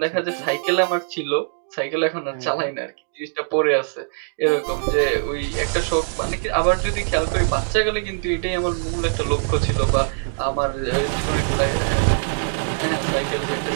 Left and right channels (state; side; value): silent; left; digital silence